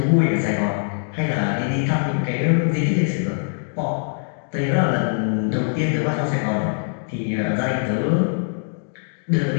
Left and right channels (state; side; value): silent; right; 63 dB below the other